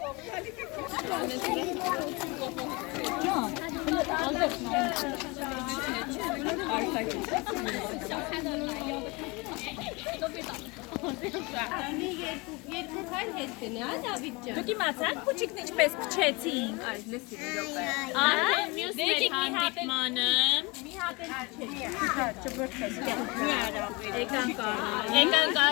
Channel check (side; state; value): right; quieter; 25.8 dB